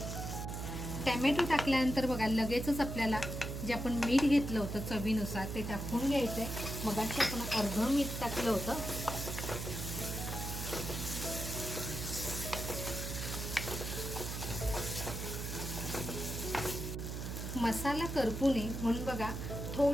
टॅमॅटो टाकल्यानंतर बघा लगेचच आपल्याला जे आपण मीठ घेतलं होतं चवीनुसार ते टाकून घ्यायचंय. मगाशी आपण अर्धं मीठ टाकलं होतं. मसाला करपू नये म्हणून बघा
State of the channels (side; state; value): right; noise; hum, 5 dB below the sound